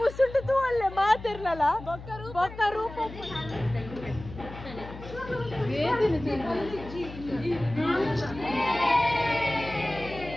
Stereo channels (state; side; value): noise; left; hum, 13 dB below the sound